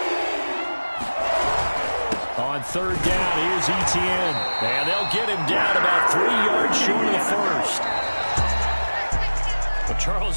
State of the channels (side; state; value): both; inverted; correlation -1.00